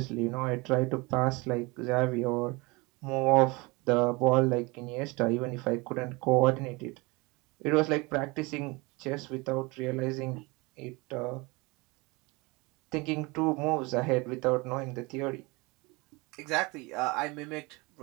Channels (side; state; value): left; quieter; 25.5 dB